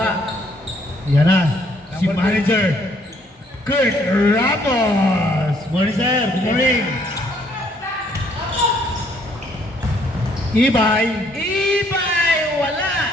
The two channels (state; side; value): normal; both; correlation 0.66